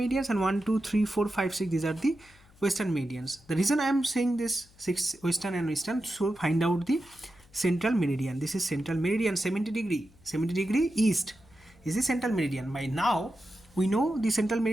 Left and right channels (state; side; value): noise; left; hum, 28 dB below the sound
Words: and 1, 2, 3, 4, 5, 6. These are the western meridians. The reason I am saying this 6 western and eastern, so find out the central meridian. This is central meridian, 70 degree east is the central meridian. By now we know the central